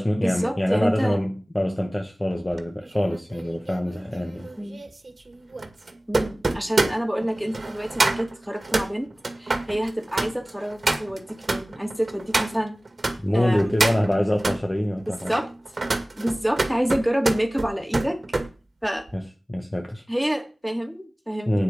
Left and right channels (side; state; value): both; normal; correlation 0.98